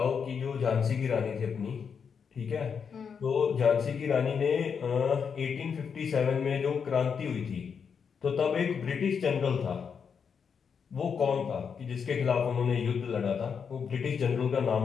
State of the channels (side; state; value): right; quieter; 6.5 dB